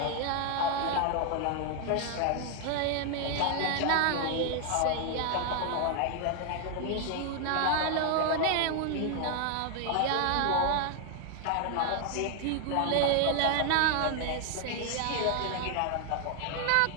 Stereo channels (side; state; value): both; different; correlation 0.00